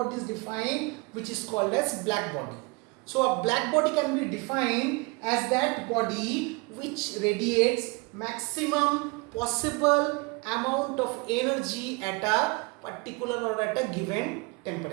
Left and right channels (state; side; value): quieter; left; 28.7 dB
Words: is defined, which is called as black body. So a black body can be defined as that body which radiates maximum possible amount of energy at a particular or at a given